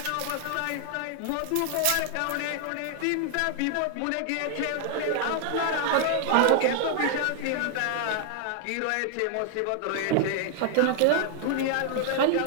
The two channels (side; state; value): both; different; correlation 0.00